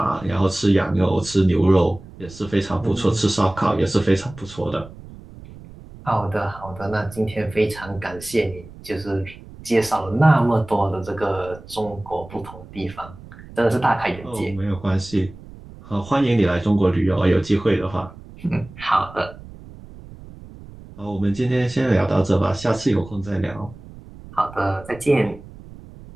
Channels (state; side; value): noise; right; rumble, 18 dB below the sound